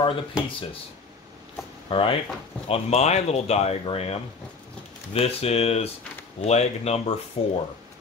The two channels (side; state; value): right; quieter; 4.4 dB